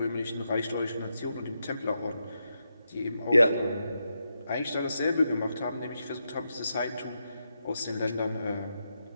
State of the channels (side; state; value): both; inverted; correlation -0.85